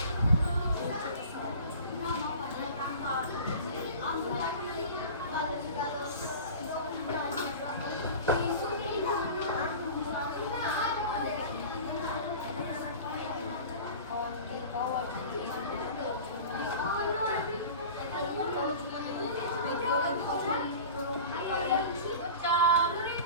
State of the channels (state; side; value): inverted; both; correlation -0.36